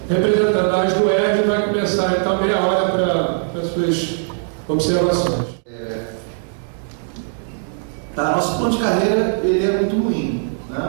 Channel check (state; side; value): silent; left; digital silence